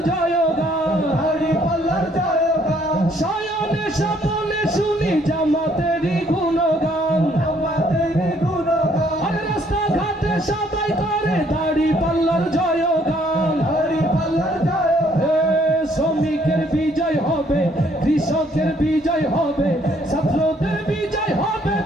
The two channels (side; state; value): both; normal; correlation 0.65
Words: জয়গান শয়নে স্বপনে শুনি জামাতেরই গুণগান রাস্তাঘাটে সবাই করে দাড়ি পাল্লার জয়গান শ্রমিকের বিজয় হবে কৃষকের বিজয় হবে ছাত্রদের বিজয় হবে